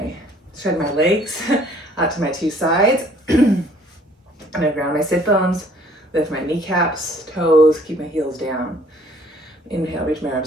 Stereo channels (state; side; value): normal; both; correlation 0.58